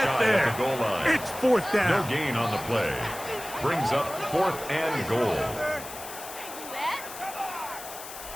there. It's 4th down. No gain on the play. Brings up 4th and goal.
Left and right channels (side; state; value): left; noise; hiss, 12 dB below the sound